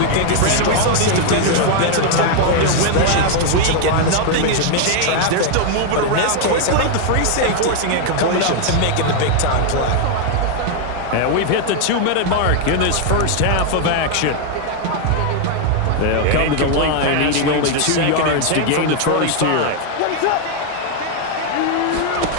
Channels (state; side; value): different; both; correlation 0.00